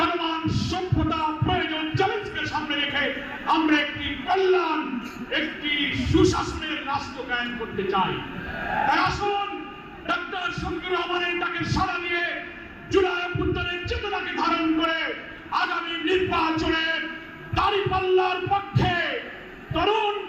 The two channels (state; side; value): identical; both; correlation 1.00